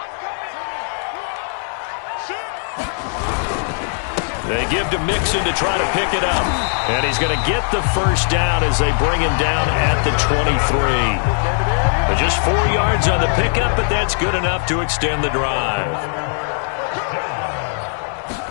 They give to Mixon to try to pick it up. And he's going to get the first down as they bring him down at the 23. But just 4 yards on the pickup, but that's good enough to extend the drive.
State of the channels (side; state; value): right; silent; 60 dB below the other